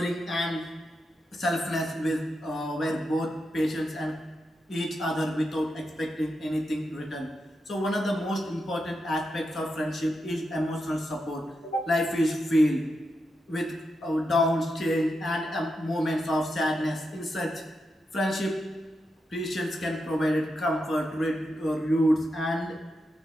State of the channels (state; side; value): normal; both; correlation 0.86